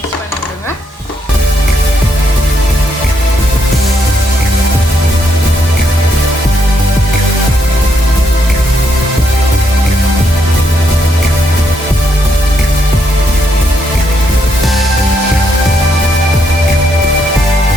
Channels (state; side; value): normal; both; correlation 0.77